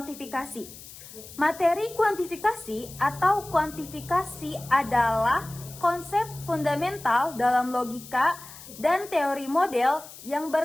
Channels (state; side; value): noise; left; hiss, 16 dB below the sound